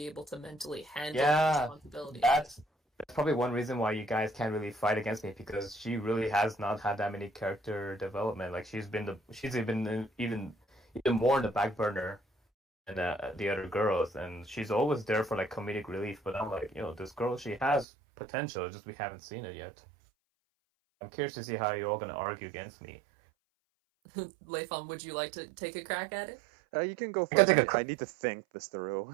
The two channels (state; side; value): drops out; left; at 17.9 s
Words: able to mentally handle the yeah. responsibility of it. That's probably one reason why you guys can't really fight against me because she really has not had that many character development. Like she's been even more in the back burner than the other girls, and she's always there for like comedic relief. But I'm like, this girl, she has potential, it's just we haven't seen it yet. I'm curious to see how you're all gonna argue against me. Leifon, would you like to take a crack at it? You can go I can first. take a I need to think this through.